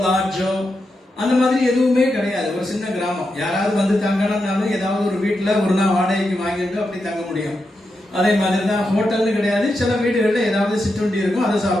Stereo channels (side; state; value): both; normal; correlation 0.87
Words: லாட்ஜோ அந்த மாதிரி எதுவுமே கிடையாது. ஒரு சின்ன கிராமம். யாராவது வந்து தங்கணும்னாலும் ஏதாவது ஒரு வீட்டுல ஒரு நாள் வாடகைக்கு வாங்கிட்டு அப்படி தங்க முடியும். அதே மாதிரி தான் ஹோட்டல்னு கிடையாது. சில வீடுகளில் ஏதாவது சிற்றுண்டி இருக்கும், அதை